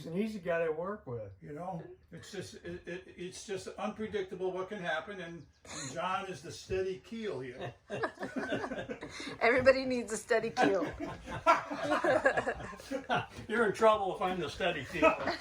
an easy guy to work with. You know, it's just unpredictable what can happen, and John is the steady keel here. Everybody needs a steady keel. You're in trouble if I'm the steady keel.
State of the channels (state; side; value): identical; both; correlation 1.00